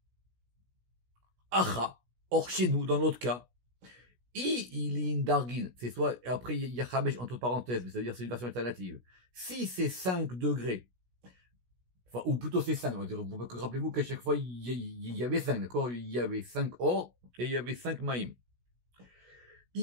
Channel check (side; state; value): left; late; 16 ms